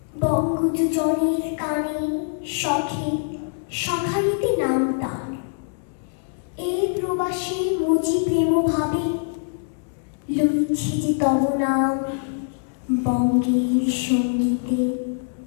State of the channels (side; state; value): right; silent; digital silence